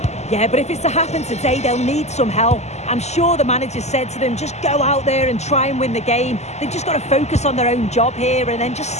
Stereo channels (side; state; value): right; late; 0.33 ms